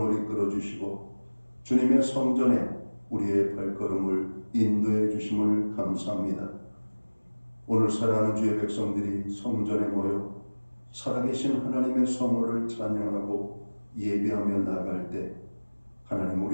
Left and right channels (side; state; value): both; inverted; correlation -1.00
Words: 이끌어 주시고 주님의 성전에 우리의 발걸음을 인도해 주심을 감사합니다. 오늘 사랑하는 주의 백성들이 성전에 모여 살아계신 하나님의 성호를 찬양하고 예배하며 나아갈 때 하나님,